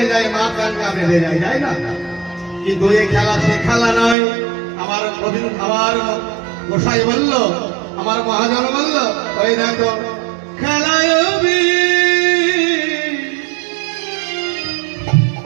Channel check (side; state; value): left; drops out; at 4.2 s